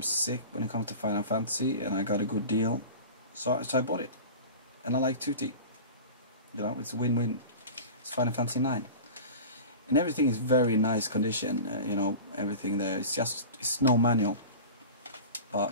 sick when it comes to Final Fantasy, and I got a good deal, so I bought it. And I like Tutti. You know, it's a win-win. It's Final Fantasy 9. And everything is very nice condition, you know, everything there. It's no manual,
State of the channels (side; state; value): both; inverted; correlation -0.34